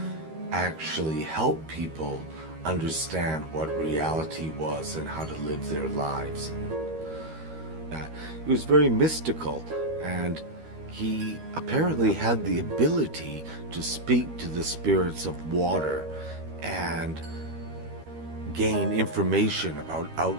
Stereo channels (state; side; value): late; left; 13 ms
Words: actually help people understand what reality was and how to live their lives. He was very mystical, and he apparently had the ability to speak to the spirits of water and gain information about